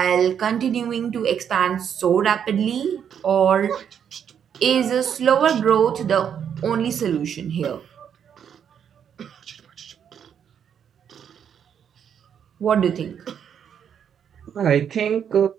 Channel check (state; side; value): quieter; left; 8.3 dB